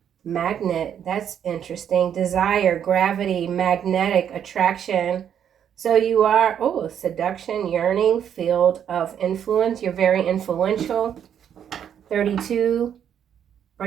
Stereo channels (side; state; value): left; quieter; 9.0 dB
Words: That's interesting. Desire, gravity, magnetic attraction. So you are, seduction, yearning, field of influence. You're very influential. 32